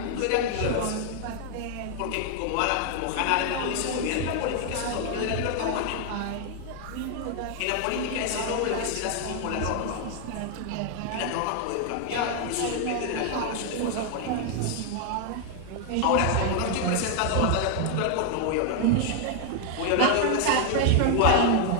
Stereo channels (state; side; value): different; both; correlation 0.00